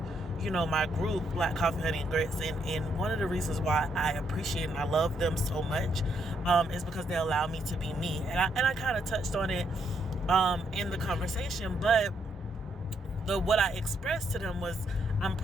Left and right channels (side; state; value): both; normal; correlation 0.75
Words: my group, Black Coffee, Honey, and Grits, and one of the reasons why I appreciate and I love them so much is because they allow me to be me. And I kind of touched on it in the conversation, but what I expressed to them was, I'm